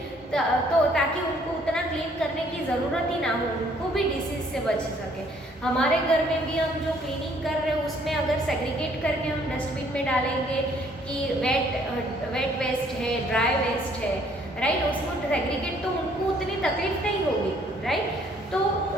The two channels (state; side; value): normal; both; correlation 0.63